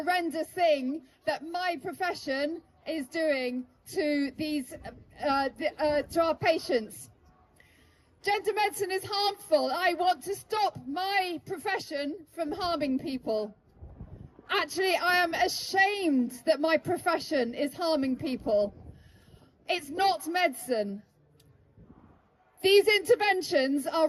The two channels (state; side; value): identical; both; correlation 1.00